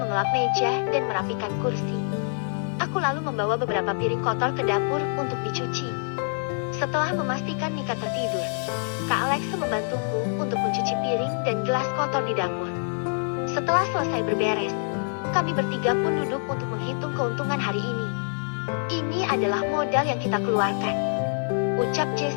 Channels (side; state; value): right; silent; 56 dB below the other